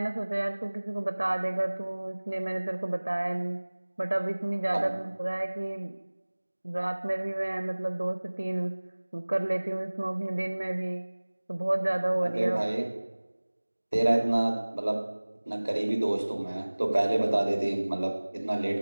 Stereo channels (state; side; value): inverted; both; correlation -1.00